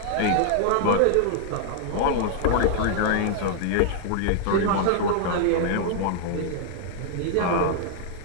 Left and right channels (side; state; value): both; different; correlation 0.00